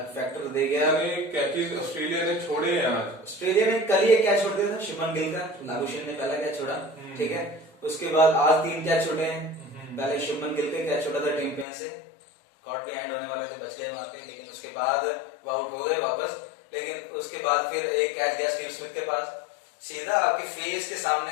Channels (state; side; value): drops out; right; at 11.7 s